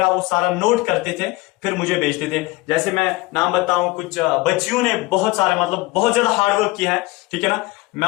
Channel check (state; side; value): quieter; right; 21.3 dB